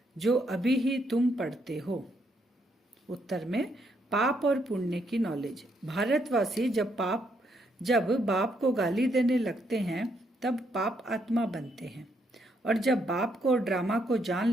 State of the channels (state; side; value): normal; both; correlation 0.75